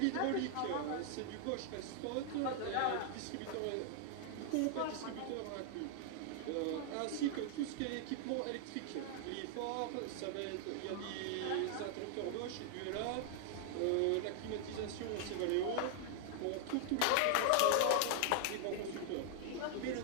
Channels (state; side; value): different; both; correlation 0.00